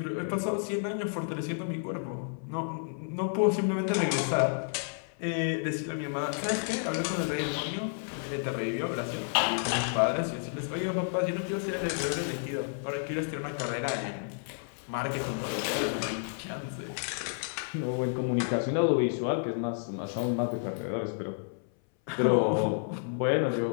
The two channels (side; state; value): right; silent; 57 dB below the other